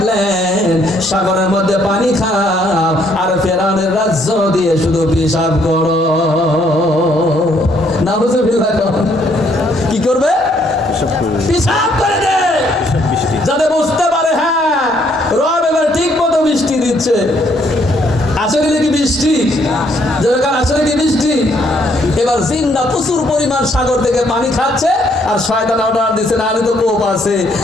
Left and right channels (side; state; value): both; normal; correlation 0.68